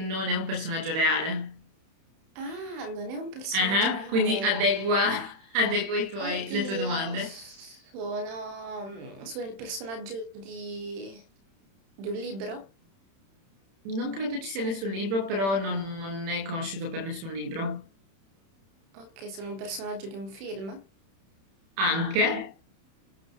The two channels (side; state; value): left; late; 31 ms